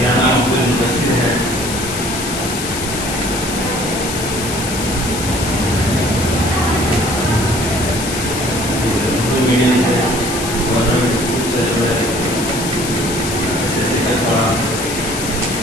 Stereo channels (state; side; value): noise; left; hiss, 6 dB below the sound